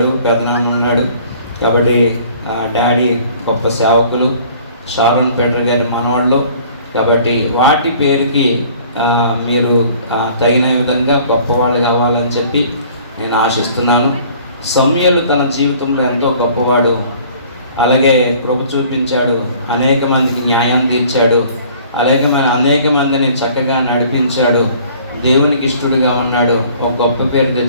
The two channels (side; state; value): both; inverted; correlation -0.53